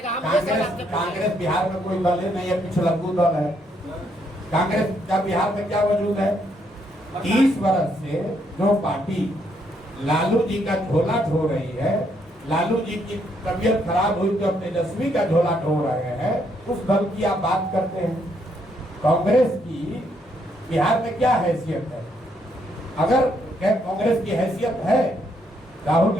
हम कांग्रेस बिहार में कोई दल नहीं है, पिछलग्गू दल है। कांग्रेस का बिहार में क्या वजूद है? 30 वर्ष से जो पार्टी लालू जी का झोला ढो रही है, लालू जी की तबीयत खराब हुई तो तेजस्वी का झोला ढो रहे हैं, उस दल की आप बात करते हैं। कांग्रेस की बिहार में क्या हैसियत है? अगर कांग्रेस की हैसियत है, राहुल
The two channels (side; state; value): both; normal; correlation 0.73